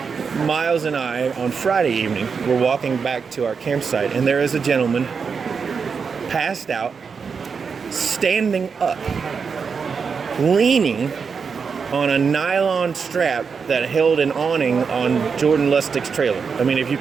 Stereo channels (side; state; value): left; quieter; 5.7 dB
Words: Miles and I, on Friday evening, were walking back to our campsite, and there is a gentleman passed out, standing up, leaning on a nylon strap that held an awning on Jordan Lustig's trailer. I mean, if you